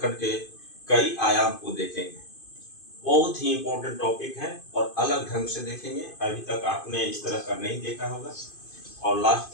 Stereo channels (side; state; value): right; late; 2.5 ms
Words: के कई आयाम को देखेंगे। बहुत ही इम्पोर्टेंट टॉपिक है और अलग ढंग से देखेंगे। अभी तक आपने इस तरह का नहीं देखा होगा और